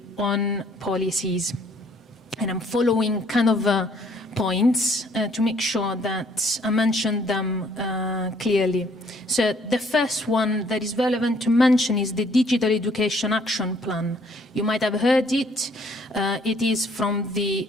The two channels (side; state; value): both; normal; correlation 0.63